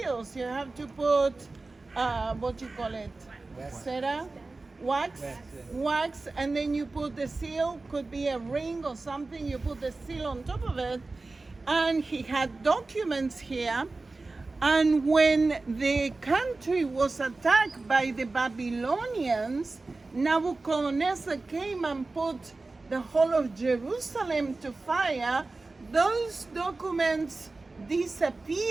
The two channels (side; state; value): left; quieter; 3.4 dB